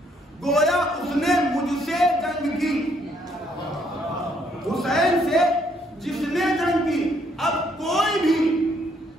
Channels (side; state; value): both; normal; correlation 0.69